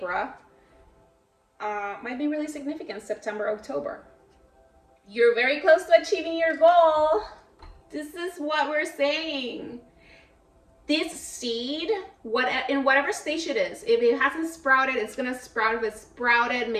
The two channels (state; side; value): identical; both; correlation 1.00